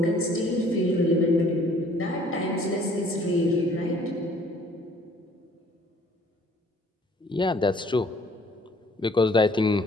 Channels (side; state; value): both; normal; correlation 0.58